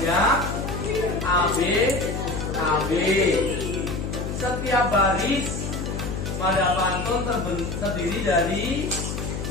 AB. Setiap baris pada pantun terdiri dari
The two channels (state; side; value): noise; left; hum, 4 dB below the sound